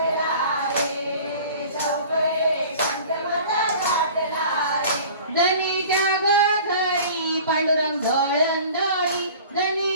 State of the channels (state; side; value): inverted; both; correlation -0.44